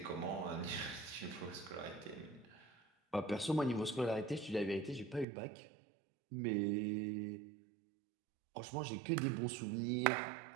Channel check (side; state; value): left; drops out; at 5.2 s